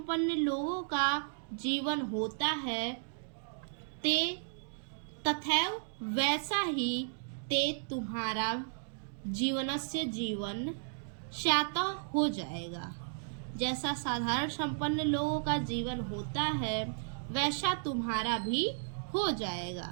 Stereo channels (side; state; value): left; silent; digital silence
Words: लोगों का जीवन होता है, ते तथैव वैसा ही ते तुम्हारा जीवनस्य जीवन स्यातः हो जाएगा, जैसा साधारण संपन्न लोगों का जीवन होता है वैसा तुम्हारा भी हो जाएगा।